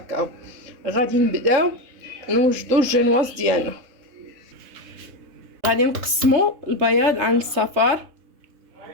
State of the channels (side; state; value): left; late; 3.2 ms